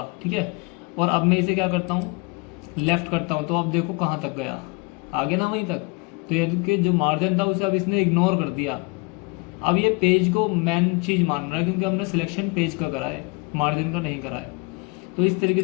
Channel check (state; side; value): quieter; right; 28.9 dB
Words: ठीक है, और अब मैं इसे क्या करता हूँ, लेफ्ट करता हूँ, तो अब देखो कहाँ तक गया, आगे ना वहीं तक। तो ये कि जो मार्जिन था उसे अब इसने इग्नोर कर दिया। अब ये पेज को मेन चीज़ मान रहा है क्योंकि हमने सिलेक्शन पेज का करा है, मार्जिन का नहीं करा है। तो इस तरीके